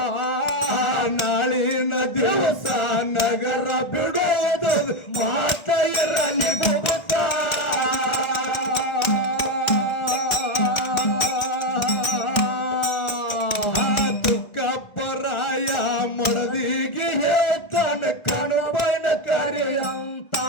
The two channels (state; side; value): late; right; 1.5 ms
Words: ನಾಳಿನ ದಿವಸ ನಗರ ಬಿಡೋದು ಮಾತ ಇರಲಿ ಬುಬುತ್ತ ತುಕ್ಕಪ್ಪರಾಯ ಮಡದಿಗೆ ಹೇಳ್ತಾನ ಕಣಬೈನ ಕರೆಯಂತ